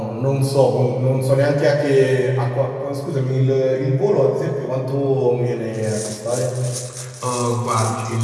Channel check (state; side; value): identical; both; correlation 1.00